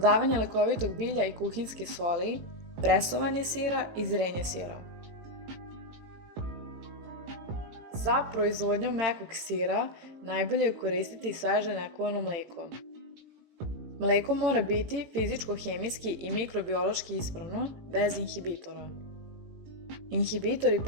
lekovitog bilja i kuhinjske soli, presovanje sira i zrenje sira. Za proizvodnju mekog sira najbolje je koristiti sveže nekovano mleko. Mleko mora biti fizičko-hemijski i mikrobiološki ispravno, bez inhibitora. Inhibitori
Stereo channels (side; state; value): left; late; 18 ms